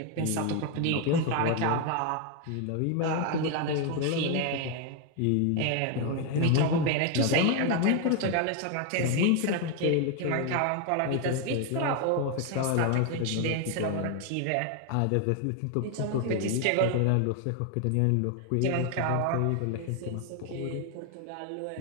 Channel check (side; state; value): both; different; correlation 0.01